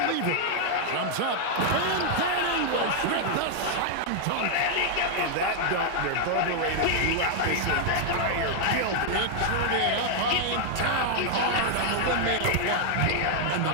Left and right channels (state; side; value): different; both; correlation 0.00